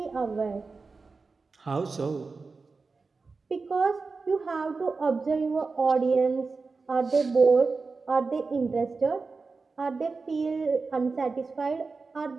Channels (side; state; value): left; quieter; 4.3 dB